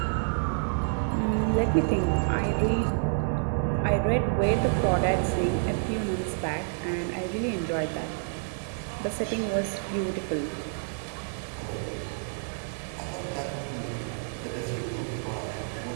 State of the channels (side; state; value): left; silent; digital silence